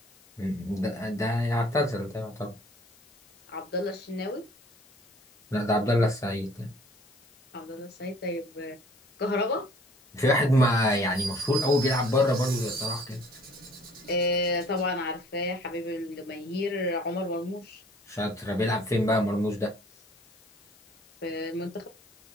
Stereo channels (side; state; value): left; noise; hiss, 28 dB below the sound